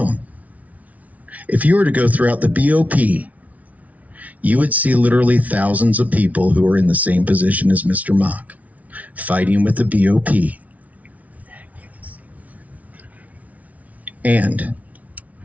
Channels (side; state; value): left; late; 0.070 ms